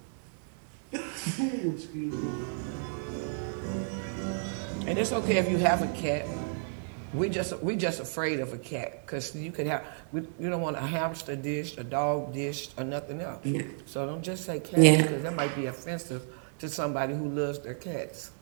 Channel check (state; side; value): silent; left; digital silence